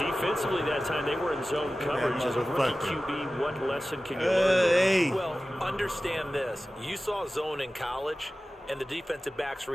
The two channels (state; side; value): normal; both; correlation 0.96